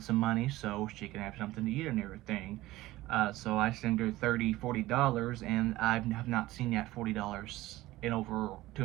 some money so she can have something to eat and everything. So I sent her $30, $40, and I have not seen that $40 in over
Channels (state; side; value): quieter; left; 17.4 dB